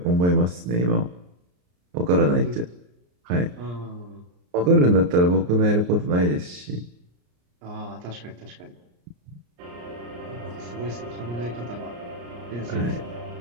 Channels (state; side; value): late; left; 34 ms